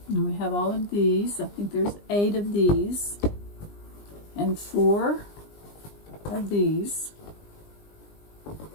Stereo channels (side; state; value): right; late; 20 ms